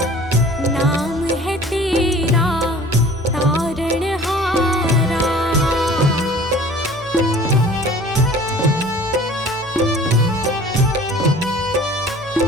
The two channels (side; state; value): left; noise; hum, 22 dB below the sound